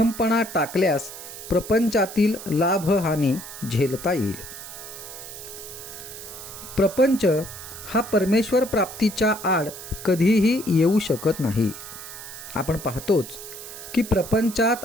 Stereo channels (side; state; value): right; noise; hiss, 12 dB below the sound